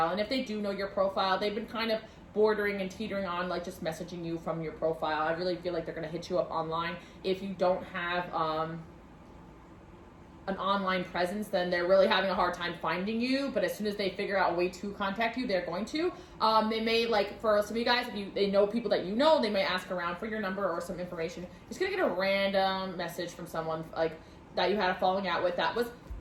and if they do know your profile, they've been kind of bordering and teetering on, like, just messaging you from your profile. I really feel like they're going to hit you up online. If you don't have, an online presence, then they're really having a hard time finding you, but as soon as they figure out a way to contact you, they're going to. They may, like, for some of you guys, if they know people that you know, they may ask around for your number or some information. You're just gonna get a random message from someone, like, that you had a falling out with. That was,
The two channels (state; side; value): identical; both; correlation 1.00